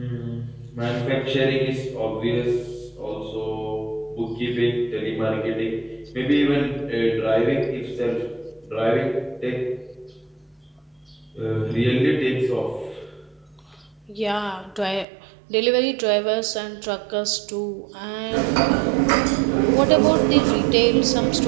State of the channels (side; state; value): left; drops out; at 15.1 s